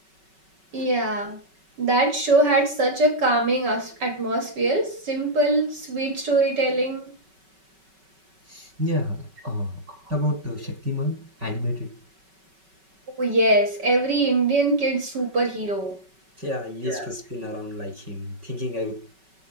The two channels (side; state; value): left; late; 5.3 ms